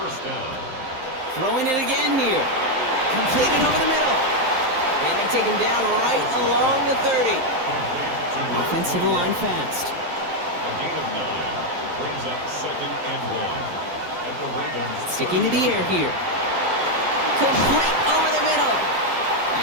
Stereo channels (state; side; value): late; left; 12 ms